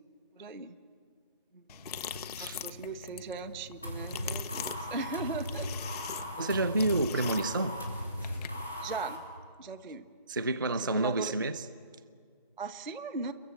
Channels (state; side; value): inverted; both; correlation -0.51